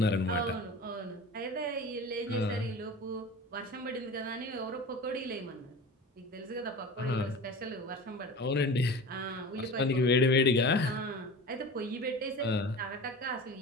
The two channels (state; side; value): normal; both; correlation 0.34